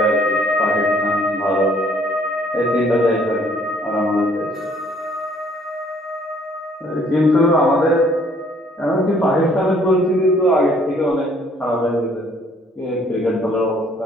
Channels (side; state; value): both; normal; correlation 0.61